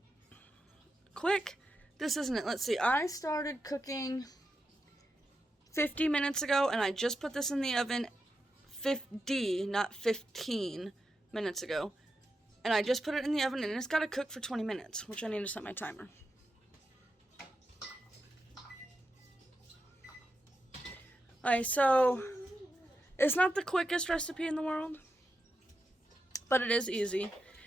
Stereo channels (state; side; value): normal; both; correlation 0.87